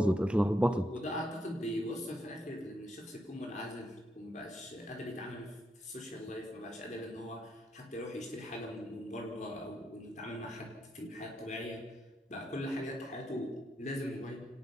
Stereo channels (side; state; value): both; normal; correlation 0.80